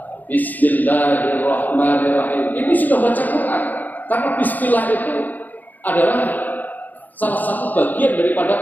Bismillahirrahmanirrahim. Ini sudah baca Quran. Karena Bismillah itu adalah salah satu bagian daripada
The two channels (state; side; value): late; right; 0.083 ms